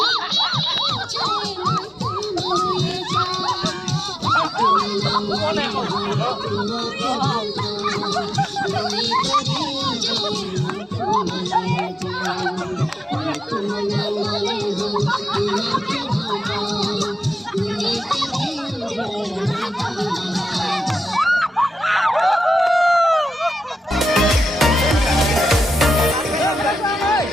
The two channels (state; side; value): normal; both; correlation 0.92